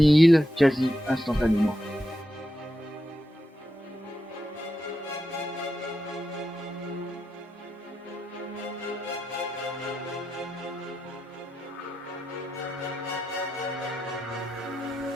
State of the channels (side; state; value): both; normal; correlation 0.87